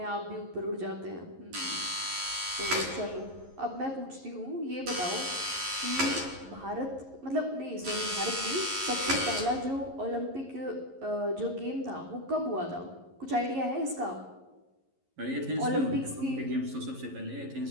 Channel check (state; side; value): late; left; 11 ms